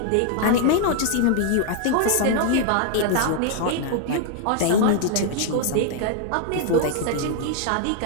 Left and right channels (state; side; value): different; both; correlation 0.00